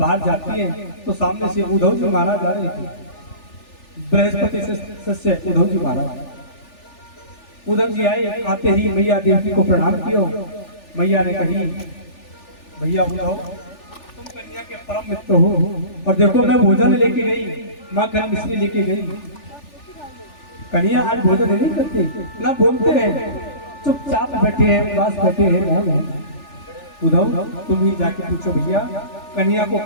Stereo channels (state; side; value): late; right; 3.4 ms